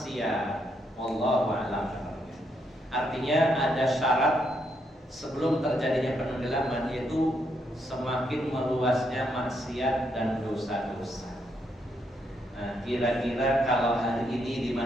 wallahu a'lam. Artinya ada syarat sebelum terjadinya penenggelaman, yaitu semakin meluasnya maksiat dan dosa-dosa. Nah, kira-kira kalau hari ini di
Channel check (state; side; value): normal; both; correlation 0.77